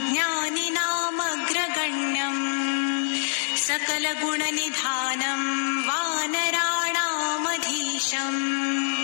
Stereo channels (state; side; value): silent; right; digital silence